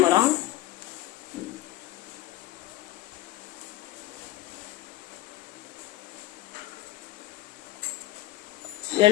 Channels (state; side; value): quieter; right; 16.0 dB